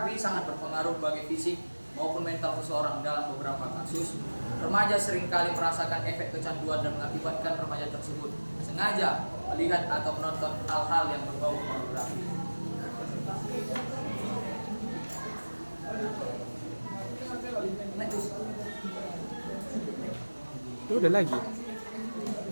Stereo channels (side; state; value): both; inverted; correlation -1.00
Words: sangat berpengaruh bagi fisik maupun mental seseorang. Dalam beberapa kasus, remaja seringkali merasakan efek kecanduan dan mengakibatkan remaja tersebut sengaja melihat atau menonton hal-hal yang berbau pornografi. Itu udah lagi.